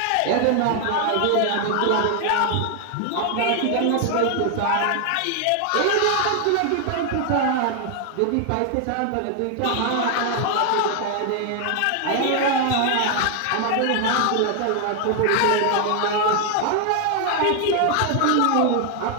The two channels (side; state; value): both; different; correlation 0.00